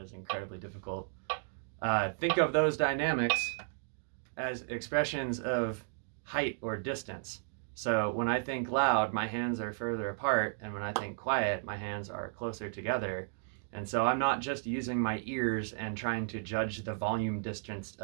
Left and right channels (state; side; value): silent; left; digital silence